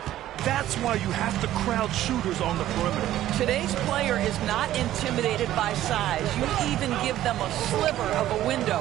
That's why you have to crowd shooters on the perimeter. Today's player is not intimidated by size. You even give them a sliver of a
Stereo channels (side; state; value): left; quieter; 13.4 dB